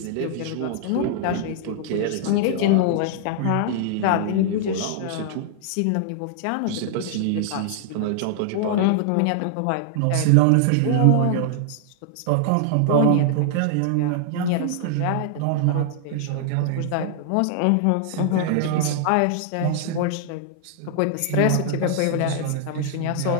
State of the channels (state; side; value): different; both; correlation -0.01